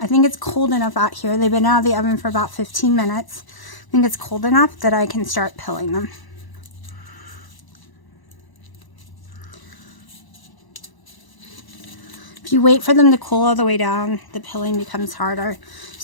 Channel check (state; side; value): late; right; 1.0 ms